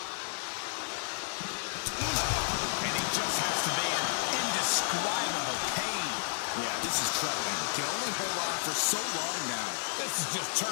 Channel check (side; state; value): right; silent; digital silence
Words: And he just has to be in indescribable pain. Yeah, this is troubling. Can only hold on for so long now. This is just